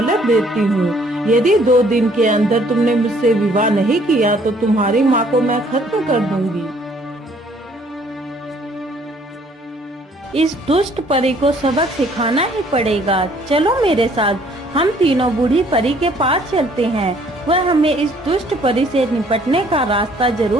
देती हूँ। यदि 2 दिन के अंदर तुमने मुझसे विवाह नहीं किया तो तुम्हारी माँ को मैं खत्म कर दूंगी। इस दुष्ट परी को सबक सिखाना ही पड़ेगा। चलो मेरे साथ, हम तीनों बूढ़ी परी के पास चलते हैं। वह हमें इस दुष्ट परी से निपटने का रास्ता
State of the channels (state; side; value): normal; both; correlation 0.61